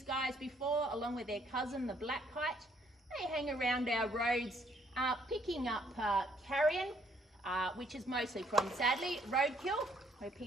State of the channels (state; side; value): normal; both; correlation 0.67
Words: guys before, along with their cousin, the black kite. They hang around our roads picking up carrion, which is mostly from, sadly, roadkill, where